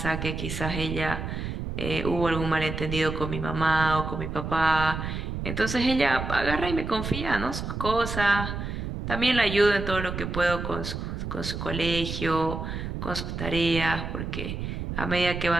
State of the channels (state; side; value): noise; right; rumble, 5 dB below the sound